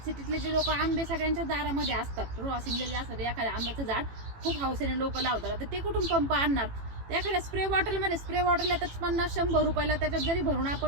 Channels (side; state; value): left; late; 18 ms